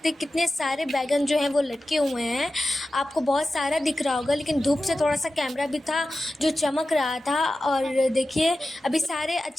हैं कितने सारे बैगन जो हैं वो लटके हुए हैं। आपको बहुत सारा दिख रहा होगा, लेकिन धूप से थोड़ा सा कैमरा भी था जो चमक रहा था। और देखिए अभी सारे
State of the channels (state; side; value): normal; both; correlation 0.93